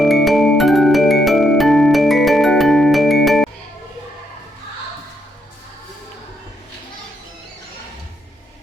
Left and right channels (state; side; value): normal; both; correlation 0.78